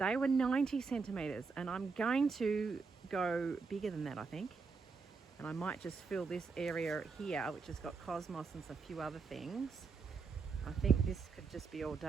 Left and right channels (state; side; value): quieter; left; 4.8 dB